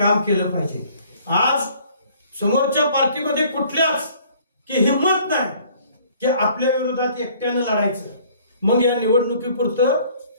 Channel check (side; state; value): both; inverted; correlation -0.57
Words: केलं पाहिजे. आज समोरच्या पार्टीमध्ये कुठल्याच की हिंमत नाही की आपल्या विरोधात एकट्यानं लढायचं. मग या निवडणुकीपुरतं